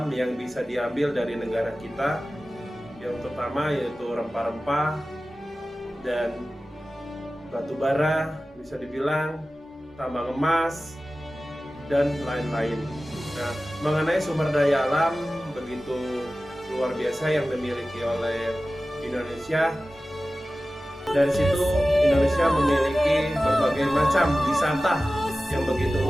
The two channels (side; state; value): both; normal; correlation 0.96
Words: yang bisa diambil dari negara kita, yang terutama yaitu rempah-rempah dan batu bara, bisa dibilang tambang emas dan lain-lain. Nah, mengenai sumber daya alam begitu luar biasa yang dimiliki oleh Indonesia, dari situ Indonesia memiliki berbagai macam wisata yang begitu